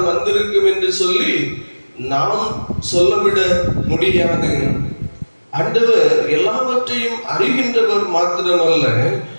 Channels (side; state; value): both; inverted; correlation -1.00